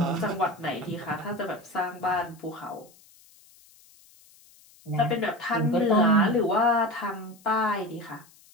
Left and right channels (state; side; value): noise; left; hiss, 27 dB below the sound